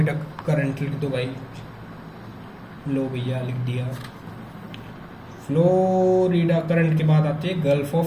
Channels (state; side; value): identical; both; correlation 1.00